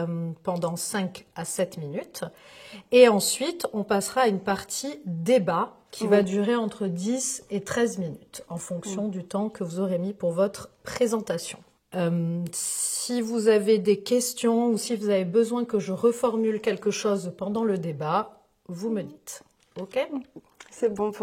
pendant 5 à 7 minutes. Et ensuite, on passera à une partie débat qui va durer entre 10 et 13 minutes en fonction du temps que vous aurez mis pour votre présentation. Si vous avez des questions ou si vous avez besoin que je reformule quelque chose pendant le débat, vous me dites. OK? C'est bon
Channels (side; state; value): both; identical; correlation 1.00